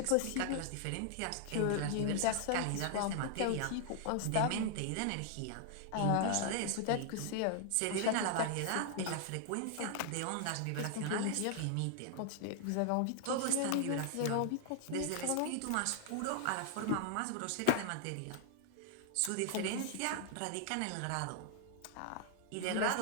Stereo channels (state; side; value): different; both; correlation 0.00